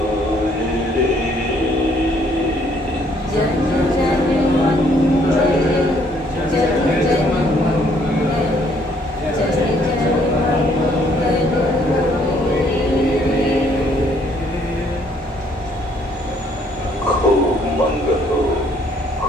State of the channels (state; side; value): normal; both; correlation 0.65